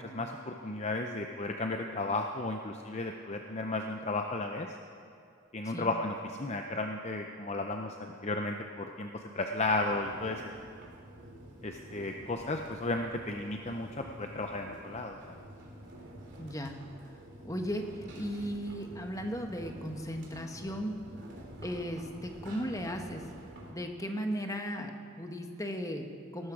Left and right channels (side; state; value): both; normal; correlation 0.32